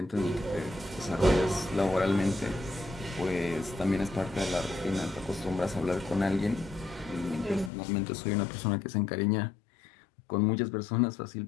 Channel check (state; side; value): drops out; right; at 7.7 s